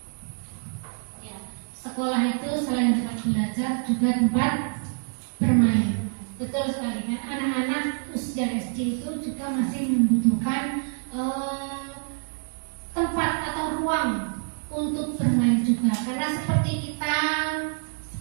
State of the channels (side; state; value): left; silent; digital silence